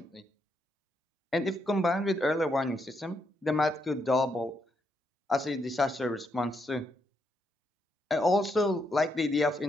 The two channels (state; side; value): normal; both; correlation 0.78